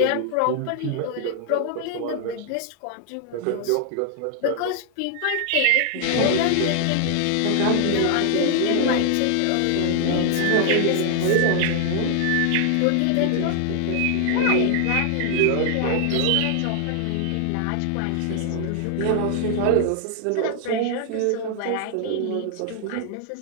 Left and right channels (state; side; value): different; both; correlation 0.00